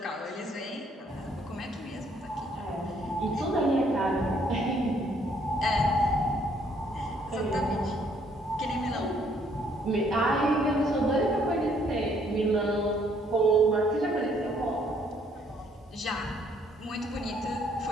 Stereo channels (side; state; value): both; normal; correlation 0.66